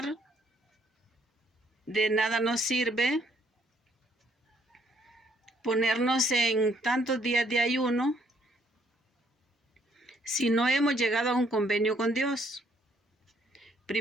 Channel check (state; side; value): normal; both; correlation 0.67